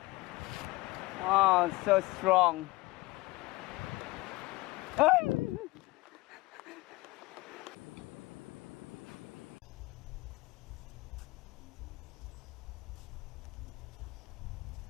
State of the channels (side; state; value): right; quieter; 21.0 dB